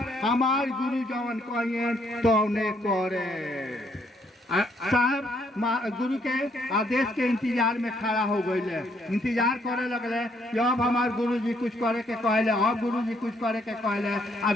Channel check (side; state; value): both; normal; correlation 0.70